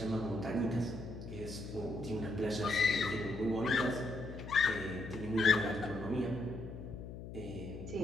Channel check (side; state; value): left; noise; hum, 10 dB below the sound